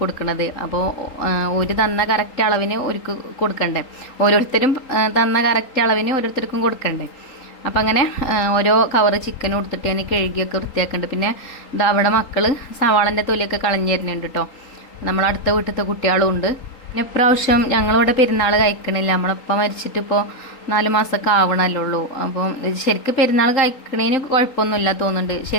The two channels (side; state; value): right; late; 3.8 ms